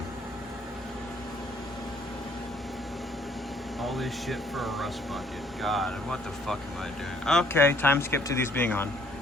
All this shit for a rust bucket. God, what the fuck am I doing? Okay, time skip to these being on.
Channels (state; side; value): normal; both; correlation 0.62